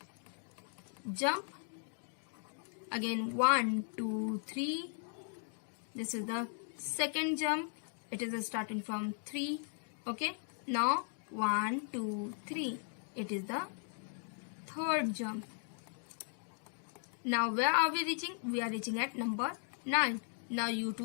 jump, again 1 2 3, this is the second jump, it is starting from 3. Okay, now 1 2 3, it is the third jump. Now where are we reaching? We are reaching at number 9. Now you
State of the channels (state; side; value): silent; right; 53 dB below the other